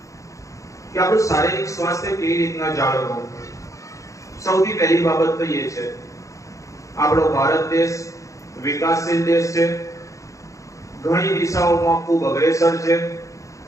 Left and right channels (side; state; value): right; late; 0.15 ms